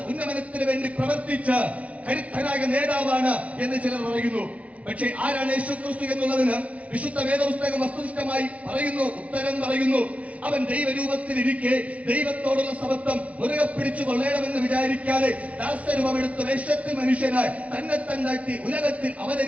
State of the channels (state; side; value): late; left; 0.066 ms